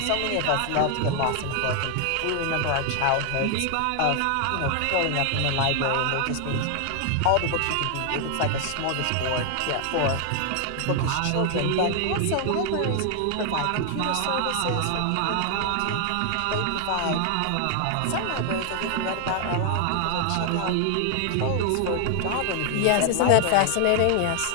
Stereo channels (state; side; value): different; both; correlation 0.00